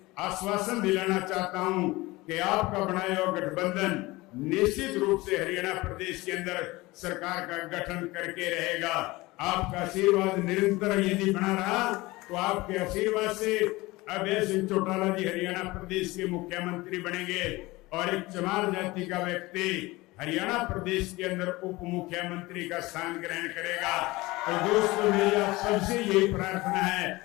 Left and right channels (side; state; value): right; quieter; 21.0 dB